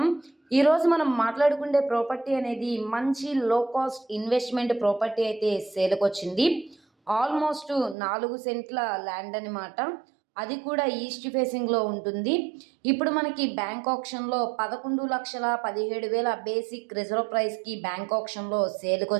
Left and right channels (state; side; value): drops out; left; at 8.0 s